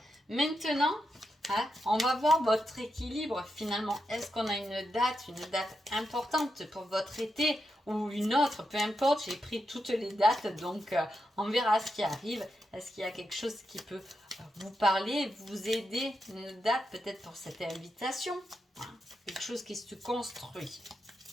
Maintenant, hein, on va voir votre équilibre finalement. Est-ce qu'on a une date importante pour votre été ou une autre, peu importe, j'ai pris toutes les dates, donc on verra ce qui arrive. Est-ce qu'il y a quelque chose qui peut vous parler, vous aider, une date peut-être pour cette invitation, hein, quelque chose qui se construit,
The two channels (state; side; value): normal; both; correlation 0.85